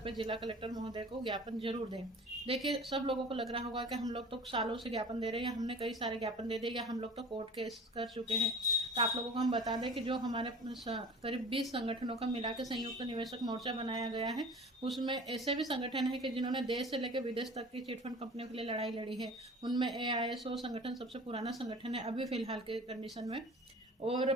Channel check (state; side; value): normal; both; correlation 0.41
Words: पर जिला कलेक्टर महोदय को ज्ञापन जरूर दें। देखिए, सब लोगों को लग रहा होगा कि हम लोग तो सालों से ज्ञापन दे रहे हैं, या हमने कई सारे ज्ञापन दे दिए, या हम लोग तो कोर्ट केस कर चुके हैं। तो आप लोगों को हम बता दें कि जो हमारे करीब 20 संगठनों का मिला के संयुक्त निवेशक मोर्चा बनाया गया है, उसमें ऐसे भी संगठन है कि जिन्होंने देश से लेकर विदेश तक की चिटफंड कंपनियों के लिए लड़ाई लड़ी है। उनमें AISO संगठन सबसे पुराना संगठन है अभी फिलहाल के कंडीशन में, और